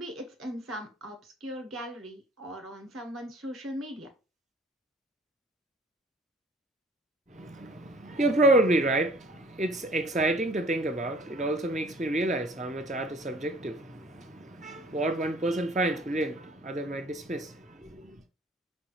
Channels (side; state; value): both; normal; correlation 0.52